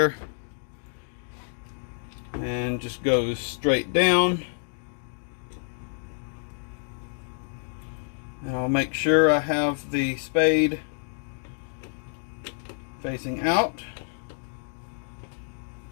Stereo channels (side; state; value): right; silent; digital silence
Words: And just goes straight down. And I'll make sure I have the spade facing out.